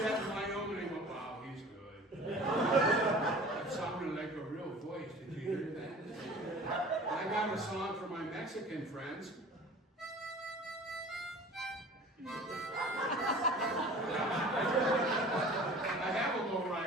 in Wyoming and went, wow, he's good. That sounded like a real voice. Did you hear that? I got a song for my Mexican friends. I have a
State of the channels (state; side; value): normal; both; correlation 0.43